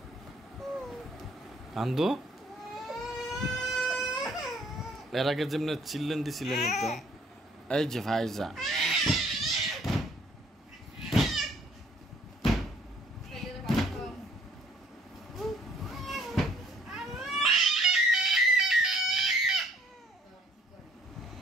কান্দো এর আগে যেমনি চিল্লেন দিছিলেন তো এই যে ভাইজা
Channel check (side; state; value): both; normal; correlation 0.61